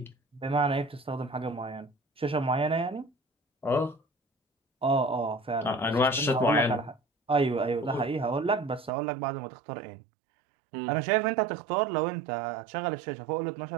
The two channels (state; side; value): drops out; left; at 8.9 s